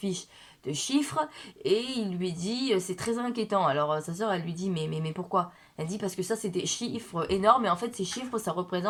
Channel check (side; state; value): both; identical; correlation 1.00